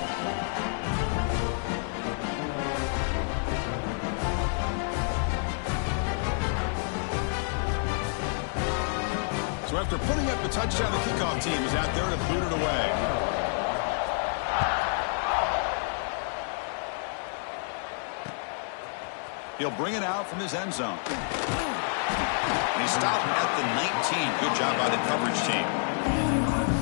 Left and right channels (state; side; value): silent; right; 59 dB below the other